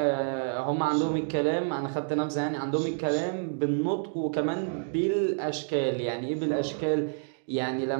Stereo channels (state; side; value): silent; left; digital silence